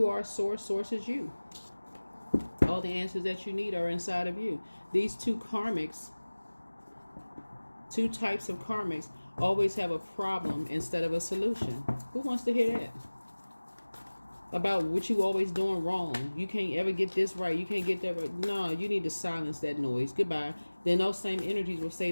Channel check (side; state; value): both; inverted; correlation -1.00